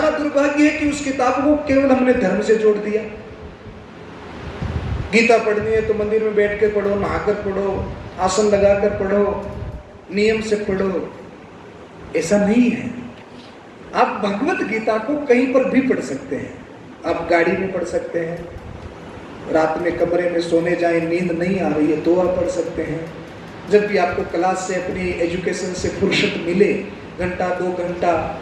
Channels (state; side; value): identical; both; correlation 1.00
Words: दुर्भाग्य है कि उस किताब को केवल हमने धर्म से जोड़ दिया। गीता पढ़नी है तो मंदिर में बैठ के पढ़ो, नहाकर पढ़ो, आसन लगाकर पढ़ो, नियम से पढ़ो। ऐसा नहीं है। आप भगवत गीता को कहीं पर भी पढ़ सकते हैं। आप गाड़ी में पढ़ सकते हैं, रात में कमरे में सोने जाएं, नींद नहीं आ रही है तो आप पढ़ सकते हैं। जब भी आपको क्लास से, अपनी एजुकेशन से फुर्सत मिले, घंटा 2 घंटा